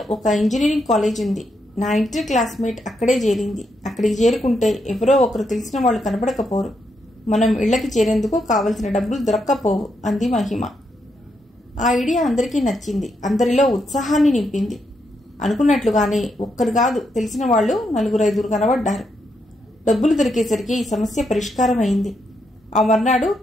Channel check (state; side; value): normal; both; correlation 0.80